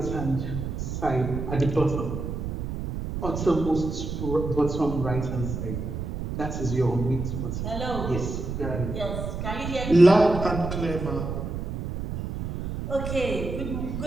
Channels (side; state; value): right; noise; rumble, 5 dB below the sound